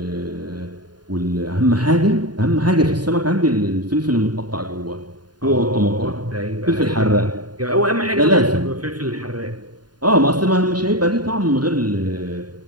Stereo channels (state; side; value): late; left; 0.70 ms